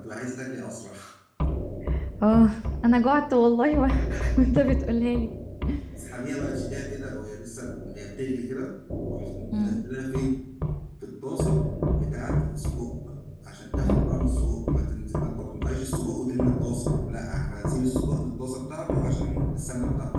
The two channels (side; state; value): both; identical; correlation 1.00